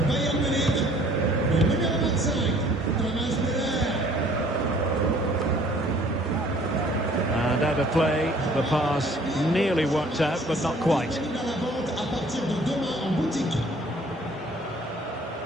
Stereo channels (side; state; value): both; normal; correlation 0.56